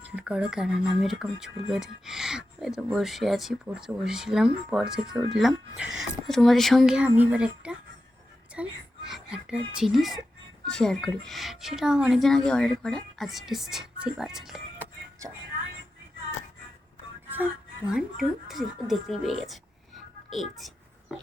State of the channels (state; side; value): normal; both; correlation 0.91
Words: করো, কারণ আমি এরকম চুল বেঁধে হয়তো বসে আছি, পড়তে বসেছিলাম, পর থেকে উঠলাম। তো তোমাদের সঙ্গে আমি এবার একটা জিনিস শেয়ার করি। সেটা অনেকদিন আগে অর্ডার করা, আজ এসছে সেই পার্সেলটা। চলো, 1 2 3 দেখতেই পেয়ে গেছে। এই